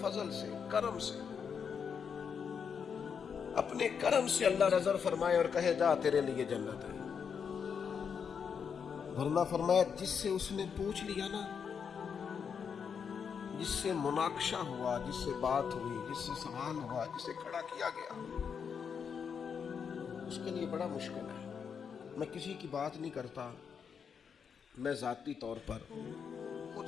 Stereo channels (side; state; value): right; quieter; 6.8 dB